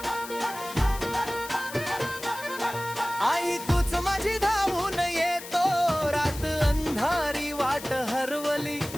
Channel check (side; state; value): left; noise; hiss, 13 dB below the sound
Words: आई तूच माझी धावून येतो, रात अंधारी वाट हरवली,